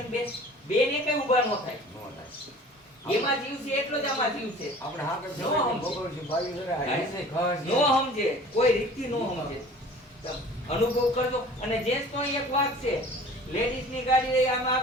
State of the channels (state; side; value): normal; both; correlation 0.46